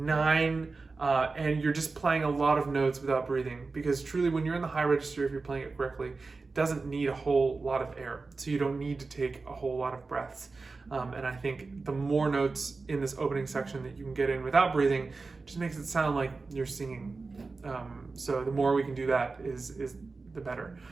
and you're just playing a lot of notes without breathing, because truly when you're in the high register, if you're playing it correctly, it doesn't need a whole lot of air, so you don't need to take a whole lot of breaths. And I think the more notes in this opening section that you can get in without breathing just makes it sound like you're singing. So the more we can do that is the better.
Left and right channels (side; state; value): left; quieter; 4.0 dB